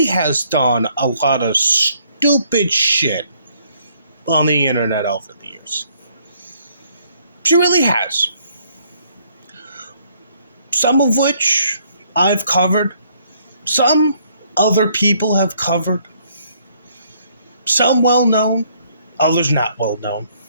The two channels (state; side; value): inverted; both; correlation -0.66